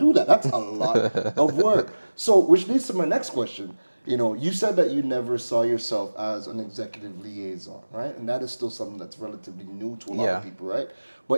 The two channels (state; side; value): inverted; both; correlation -1.00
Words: that. That's a lot of work. So, which leads to my next question. You know, you said that you never saw yourself as an executive liaison, right? And that is still something that's relatively new to a lot Yeah. of people, right?